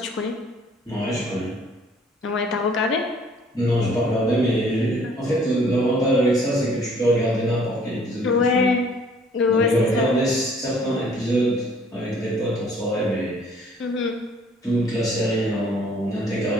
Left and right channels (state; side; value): normal; both; correlation 0.58